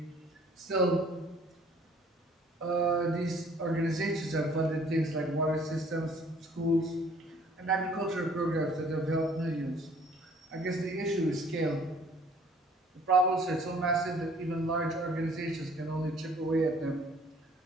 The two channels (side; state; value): both; normal; correlation 0.57